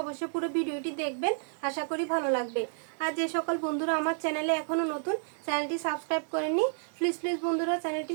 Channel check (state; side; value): silent; left; 57 dB below the other